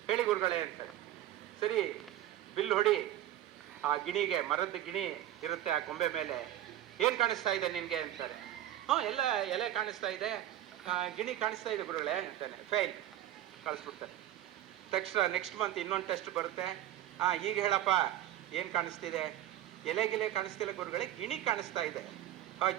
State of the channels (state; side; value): quieter; left; 12.9 dB